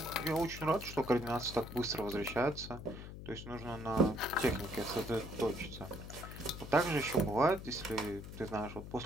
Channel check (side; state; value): left; noise; hum, 11 dB below the sound